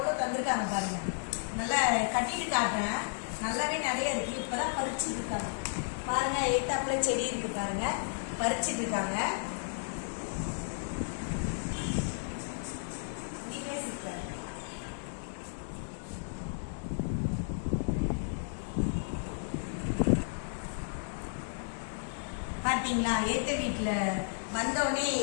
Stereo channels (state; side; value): silent; right; digital silence